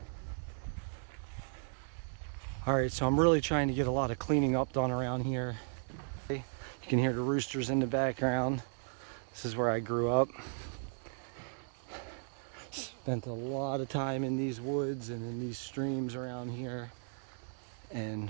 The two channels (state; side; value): silent; left; 54 dB below the other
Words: Alright, so I'm really trying to get a lot of cleaning up done around here. You can hear the roosters in the background. This is where I grew up. Spent a lot of time in these woods and in these streams around here, and